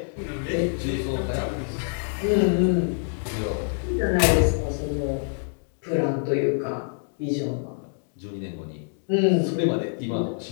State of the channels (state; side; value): silent; right; digital silence